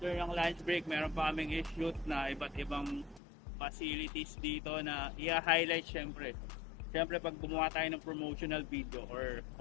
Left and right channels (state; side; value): drops out; right; at 3.2 s